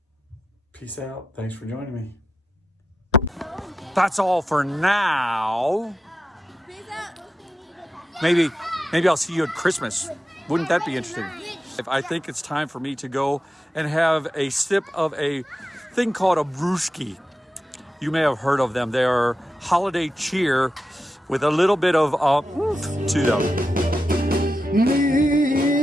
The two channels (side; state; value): both; normal; correlation 0.89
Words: Peace out. Thanks for joining me. That's all for now. Maybe I'll see you at Christmas. Wouldn't that be interesting? I think it's time for me to go and have a sip of a thing called a brewski. You may have heard of them. They are holiday cheer with a little bit of to them.